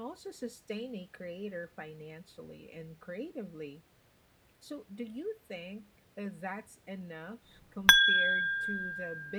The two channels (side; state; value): both; identical; correlation 1.00